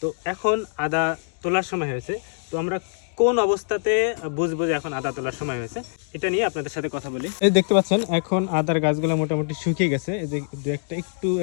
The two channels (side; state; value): right; silent; digital silence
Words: এখন আদা তোলার সময় হয়েছে, তো আমরা কোন অবস্থাতে বুঝবো যে এখন আদা তোলার সময় হয়েছে এটা নিয়ে আপনাদের সাথে কথা বলি। এই দেখতে পাচ্ছেন এখন আদার গাছগুলো মোটামুটি শুকিয়ে গেছে, এই যে দু একটা একটু